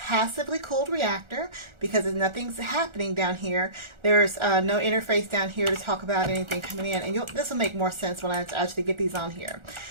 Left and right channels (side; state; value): left; late; 1.4 ms